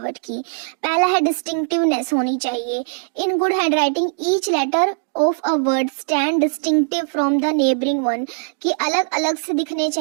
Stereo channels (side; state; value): left; silent; digital silence